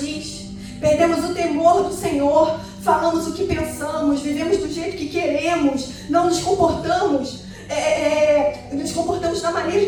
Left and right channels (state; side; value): identical; both; correlation 1.00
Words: Perdemos o temor do Senhor, falamos o que pensamos, vivemos do jeito que queremos, não nos comportamos, da maneira